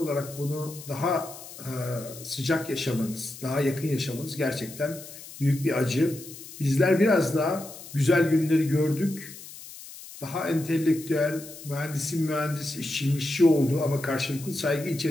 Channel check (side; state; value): left; noise; hiss, 15 dB below the sound